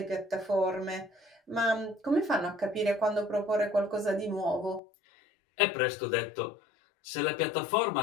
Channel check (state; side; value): drops out; right; at 4.8 s